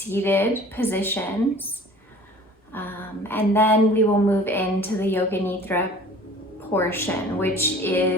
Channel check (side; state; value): both; normal; correlation 0.47